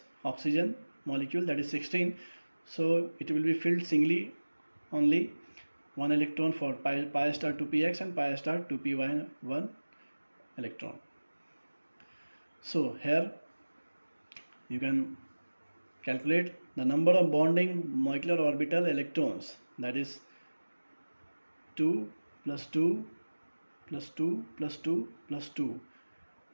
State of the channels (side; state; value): both; inverted; correlation -1.00